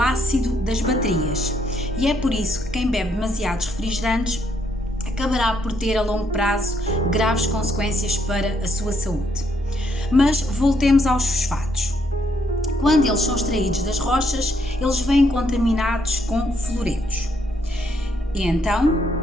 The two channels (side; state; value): both; normal; correlation 0.73